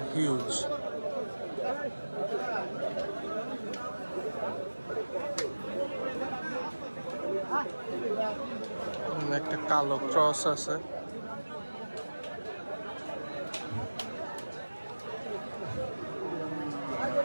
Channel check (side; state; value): both; inverted; correlation -1.00